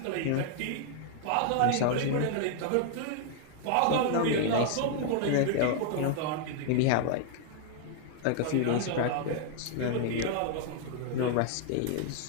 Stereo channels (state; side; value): different; both; correlation 0.00